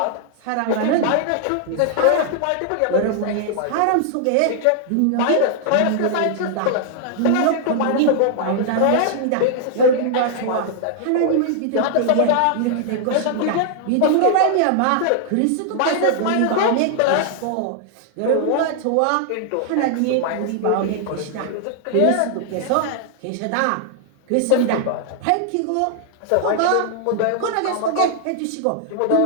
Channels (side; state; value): both; different; correlation 0.00